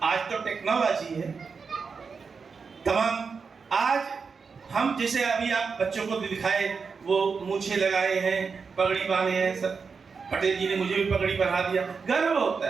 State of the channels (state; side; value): quieter; left; 5.3 dB